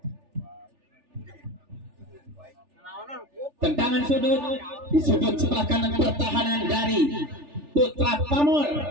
Tendangan sudut di sudut sebelah kanan pertahanan dari Putra Pamor.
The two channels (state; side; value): late; left; 3.4 ms